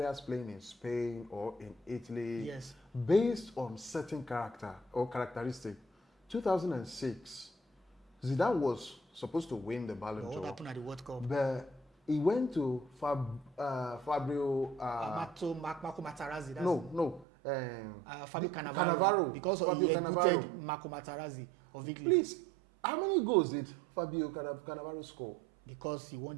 playing in Spain or in Italy, based on certain character or characteristic. 2006, Zidane was supposed to win the Ballon d'Or. What happened at the World Cup? But he went to Fabio. Marco Materazzi. Fabio Cannavaro. Because he put Marco Materazzi of Italy. Please, how many goals did Fabio Cannavaro score? Because he won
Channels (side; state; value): left; drops out; at 17.2 s